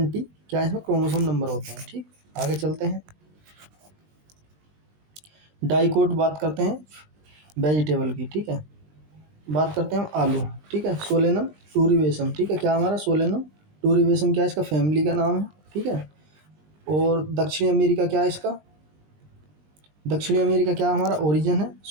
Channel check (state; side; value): late; left; 20 ms